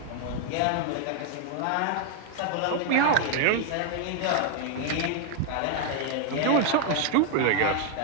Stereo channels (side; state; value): both; different; correlation 0.00